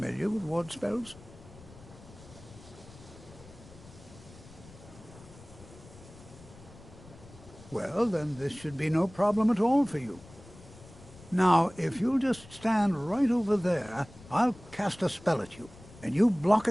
with ward spells? Well, then this should be no problem at all for you. Now, if you'll just stand right over there, I'll cast a spell at you, and you block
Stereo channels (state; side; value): noise; left; rumble, 20 dB below the sound